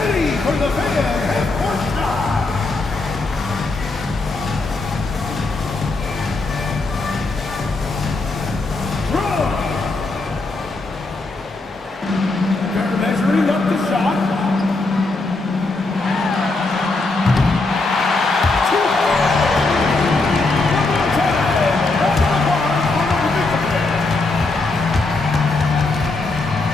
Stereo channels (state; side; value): quieter; right; 3.3 dB